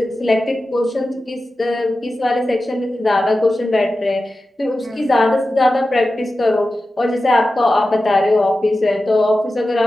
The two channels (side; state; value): both; normal; correlation 0.93